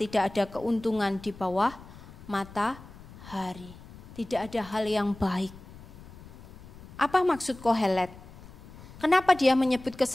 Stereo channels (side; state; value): left; noise; rumble, 18 dB below the sound